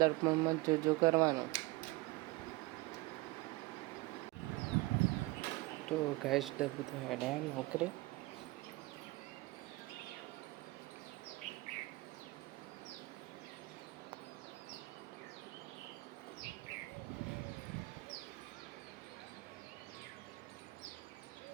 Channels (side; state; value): left; quieter; 21.9 dB